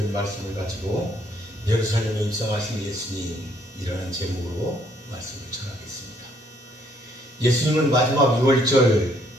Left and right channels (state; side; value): normal; both; correlation 0.67